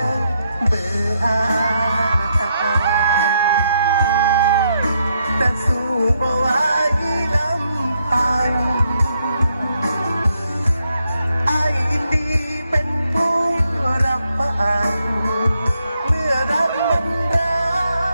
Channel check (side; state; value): both; inverted; correlation -0.78